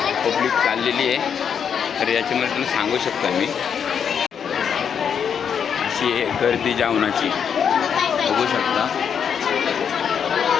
पब्लिक चाललेली आहे. तर याच्यामध्ये तुम्ही सांगू शकता मी अशी आहे गर्दी जेवणाची. बघू शकता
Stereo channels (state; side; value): quieter; right; 7.5 dB